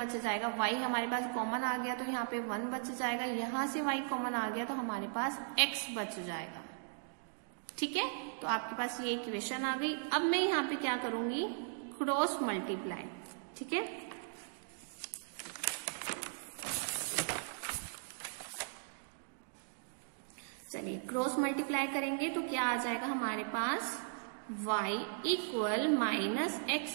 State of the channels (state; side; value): silent; left; digital silence